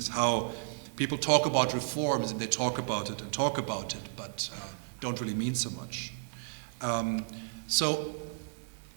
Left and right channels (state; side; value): silent; left; digital silence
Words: How people talk about reforms and they talk about it, but don't really mean so much. So